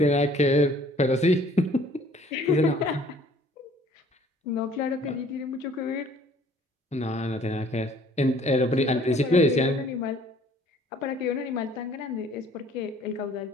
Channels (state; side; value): normal; both; correlation 0.56